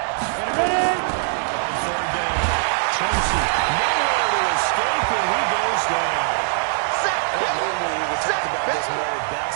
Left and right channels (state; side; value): silent; left; 64 dB below the other